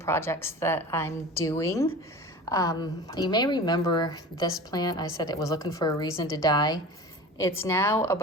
that I'm doing. You may remember this plant. I said it was looking for a reason to die. It's now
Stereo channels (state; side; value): normal; both; correlation 0.36